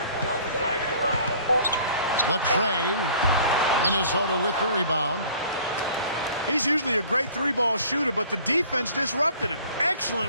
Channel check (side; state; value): both; inverted; correlation -0.51